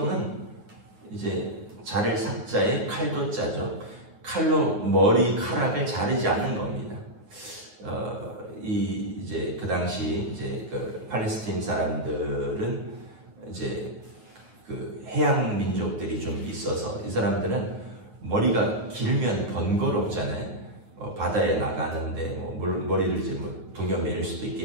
이제 자를 삭자에 칼도 짜죠. 칼로 머리카락을 자르지 않는 겁니다. 이제 그 당시 이제 그 팔레스타인 사람들은 이제 그 해양 민족들이 좀 있어서 이 사람들은 머리가 길면 번거롭잖아요. 바다에 나가는데 뭐 머리를 이제 뭐 동여매일 수도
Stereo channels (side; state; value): left; late; 9.4 ms